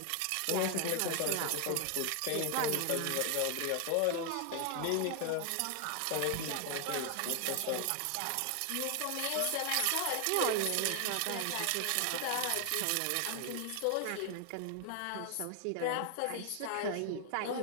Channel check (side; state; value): both; different; correlation 0.00